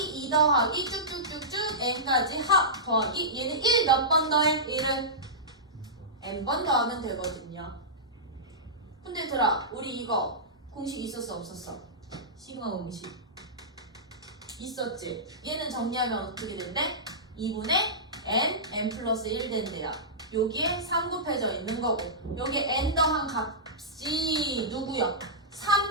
2 더하기 쭉쭉쭉쭉 n까지 합 더하기 얘는 1 몇 번 더해? 1은 n번 더하면 되거든요. 근데 얘들아 우리 이거 공식 있었어 없었어? 시그마 공식 있었지? 얘는 정리하면 어떻게 된대? 2분의 n 플러스 1 된대요. 여기에 3 곱해져 있는 거고 여기에 n 더한 값이 누구야?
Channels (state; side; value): normal; both; correlation -0.16